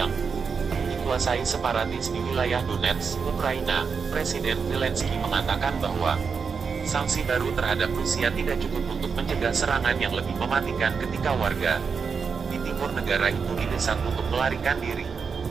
dikuasai separatis di wilayah Donetsk, Ukraina. Presiden Zelensky mengatakan bahwa sanksi baru terhadap Rusia tidak cukup untuk mencegah serangan yang lebih mematikan ketika warga di timur negara itu didesak untuk melarikan diri.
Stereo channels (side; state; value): left; quieter; 5.7 dB